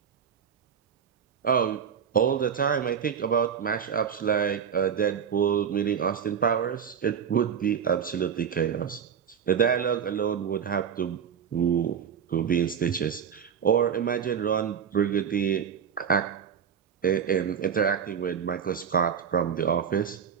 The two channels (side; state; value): left; quieter; 7.7 dB